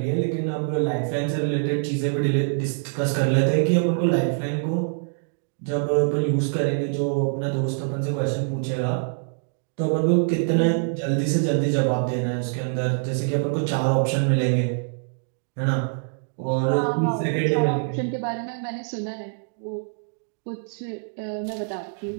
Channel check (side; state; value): left; silent; digital silence